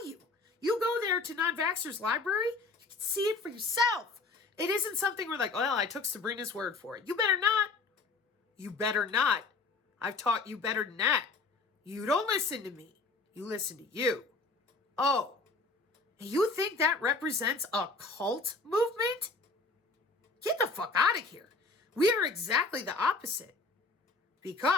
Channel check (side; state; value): right; quieter; 3.8 dB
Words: you. You go there to Non-Vaxxer's library, you can see it for yourself. It isn't something we're like, well, I took Sabrina's word for it. You better not. You better not. I've taught you better than that. You don't listen to me. You listen to you. Oh, you think that represents a cult movement? Get the fuck out of here. We are exactly the opposite.